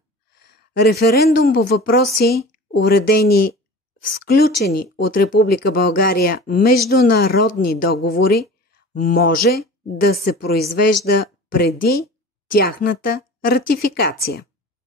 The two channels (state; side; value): normal; both; correlation 0.38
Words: референдум по въпроси, уредени в сключени от Република България международни договори, може да се произвежда преди тяхната ратификация.